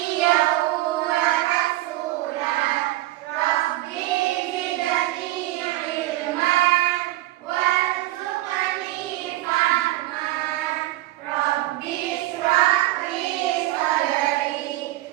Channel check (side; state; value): left; quieter; 17.2 dB